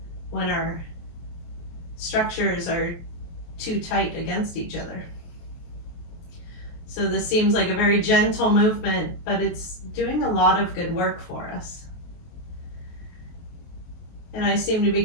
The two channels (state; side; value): late; right; 23 ms